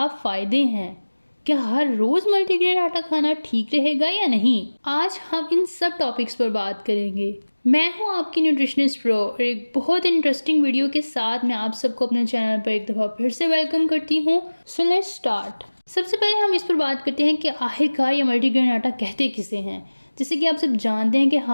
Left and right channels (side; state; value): both; inverted; correlation -1.00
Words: फ़ायदे हैं? क्या हर रोज़ मल्टीग्रेन आटा खाना ठीक रहेगा या नहीं? आज हम इन सब टॉपिक्स पर बात करेंगे। मैं हूं आपकी न्यूट्रिशनिस्ट प्रो और एक बहुत इंटरेस्टिंग वीडियो के साथ मैं आप सबको अपने चैनल पर एक दफ़ा फिर से वेलकम करती हूं। So let's start. सबसे पहले हम इस पर बात करते हैं कि आखिरकार ये मल्टीग्रेन आटा कहते किसे हैं। जैसे कि आप सब जानते हैं कि